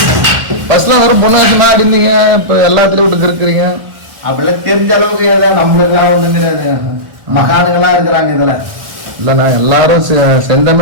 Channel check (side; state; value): left; late; 1.8 ms